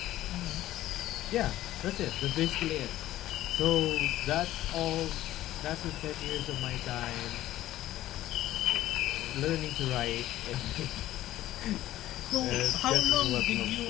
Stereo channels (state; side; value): quieter; right; 14.5 dB